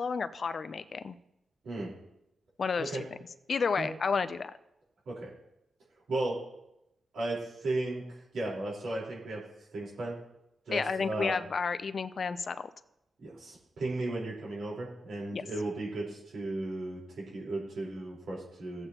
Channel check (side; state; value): both; normal; correlation 0.87